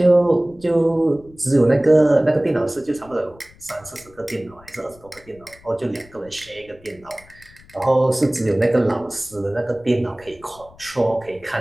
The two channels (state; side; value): noise; left; rumble, 25 dB below the sound